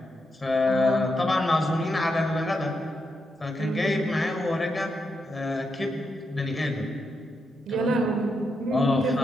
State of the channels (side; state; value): both; normal; correlation 0.83